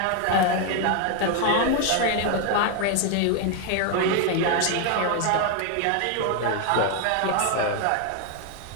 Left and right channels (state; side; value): different; both; correlation 0.01